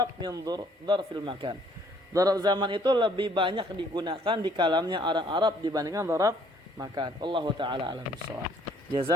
min dzarfil makan. Dzarf zaman itu lebih banyak digunakan di kalamnya orang Arab dibandingkan dzarf makan. Allahu taala alam bissawab.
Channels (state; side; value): normal; both; correlation 0.62